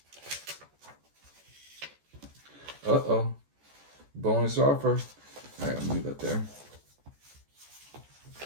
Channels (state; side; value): late; left; 14 ms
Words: Uh-oh. Bonus offer. All right, I'll leave that there.